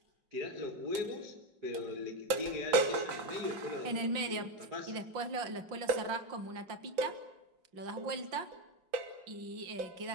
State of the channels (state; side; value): late; left; 5.7 ms